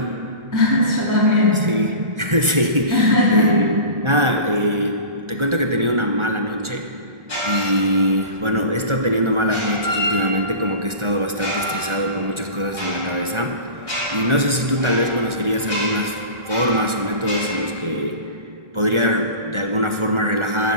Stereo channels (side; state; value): left; late; 1.4 ms